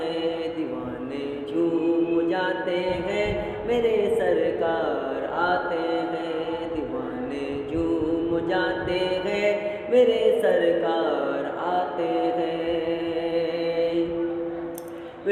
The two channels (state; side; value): identical; both; correlation 1.00